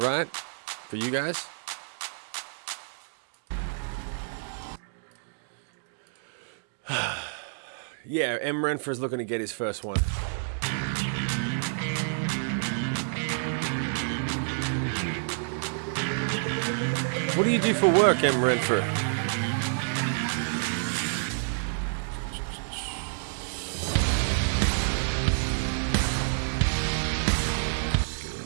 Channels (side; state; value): left; silent; digital silence